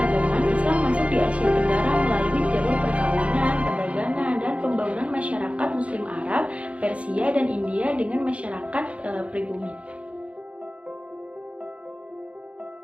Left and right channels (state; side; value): late; left; 0.063 ms